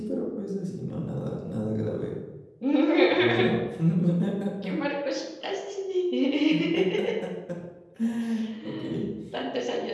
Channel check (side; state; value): both; identical; correlation 1.00